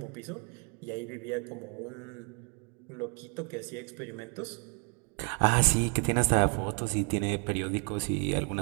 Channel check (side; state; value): left; quieter; 37.2 dB